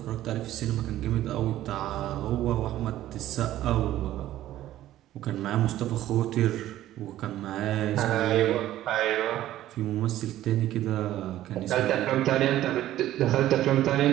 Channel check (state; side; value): quieter; left; 13.7 dB